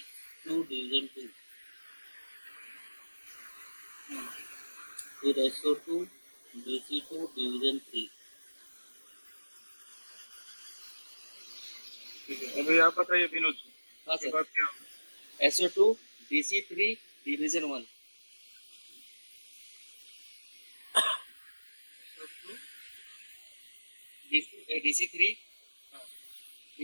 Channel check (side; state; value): both; inverted; correlation -1.00